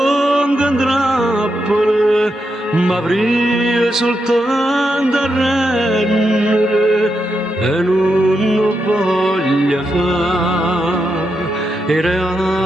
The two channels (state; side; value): normal; both; correlation 0.84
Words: M'avrei soltanto a rendere e non lo voglio fare, i